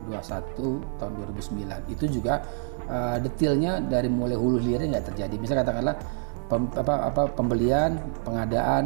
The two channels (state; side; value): silent; left; 60 dB below the other